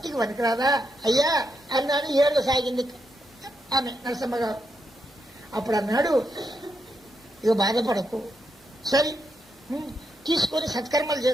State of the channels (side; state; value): both; normal; correlation 0.82